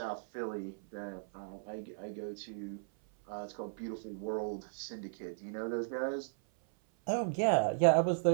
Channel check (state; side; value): silent; left; 54 dB below the other